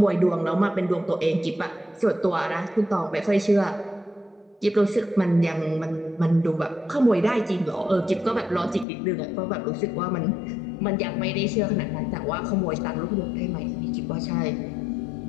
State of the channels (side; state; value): right; drops out; at 8.8 s